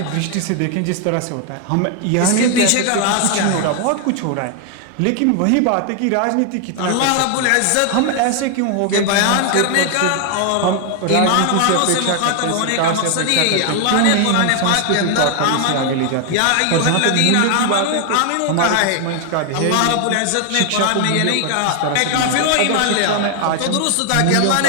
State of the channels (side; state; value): both; different; correlation 0.00